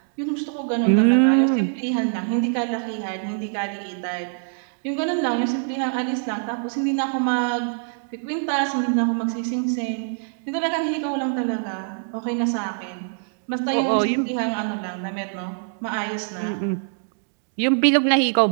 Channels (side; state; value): left; silent; digital silence